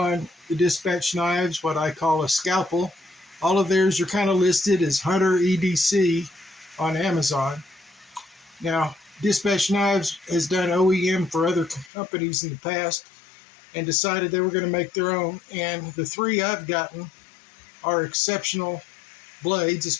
the Dispatch knives, what I call a scalpel. All of theirs are kind of listed as Hunter EDC on Amazon. Now, Dispatch Knives has done OEM for other companies in the past and decided they were going to make their own. And the three I've gotten are exceptional blades,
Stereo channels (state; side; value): drops out; right; at 11.9 s